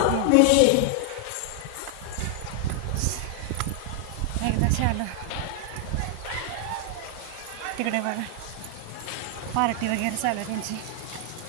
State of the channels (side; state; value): both; different; correlation 0.00